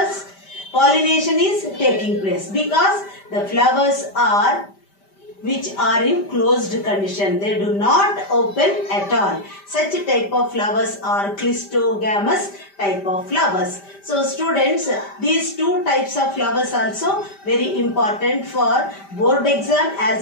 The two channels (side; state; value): right; late; 5.1 ms